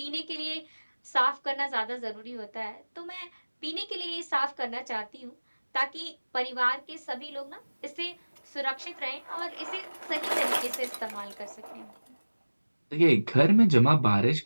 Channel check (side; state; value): both; inverted; correlation -1.00